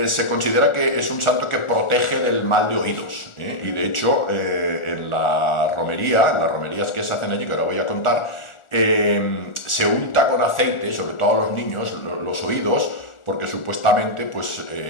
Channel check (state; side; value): late; right; 1.4 ms